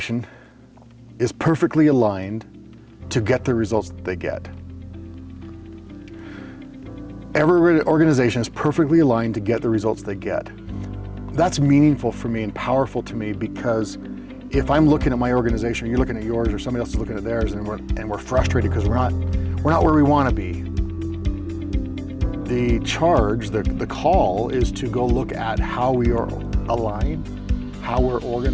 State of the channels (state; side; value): identical; both; correlation 1.00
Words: is perfectly aligned to get the results that they get. Every organization is perfectly aligned to get the results they get. That's meaningful for me and powerful to me, because if I'm looking at my organization, or you're looking at yours, or somebody else is looking at theirs, and we're frustrated because we're not where we want to be, the charge, the call is to go look at how we are aligned, how we're